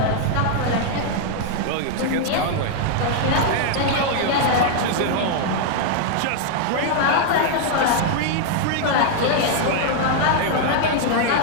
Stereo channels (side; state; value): both; different; correlation 0.00